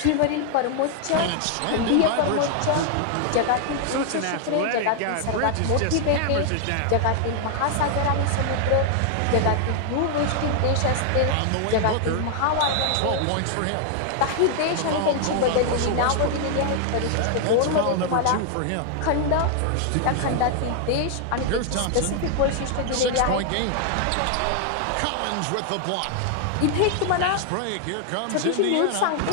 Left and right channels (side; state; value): both; different; correlation 0.00